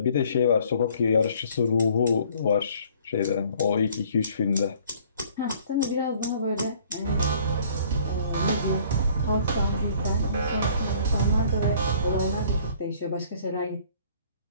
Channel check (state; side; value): inverted; both; correlation -0.57